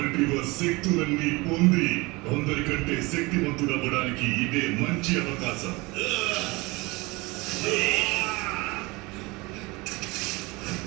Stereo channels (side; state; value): left; quieter; 24.1 dB